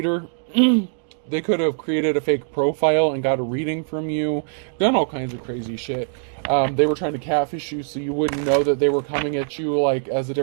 they could have created a fake profile and got a reading from you. Done all kinds of crazy shit. They were trying to catfish you so you wouldn't know that they were coming at you like as a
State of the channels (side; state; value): left; silent; digital silence